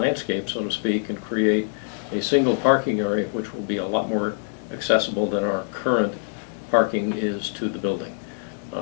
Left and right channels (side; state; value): right; silent; digital silence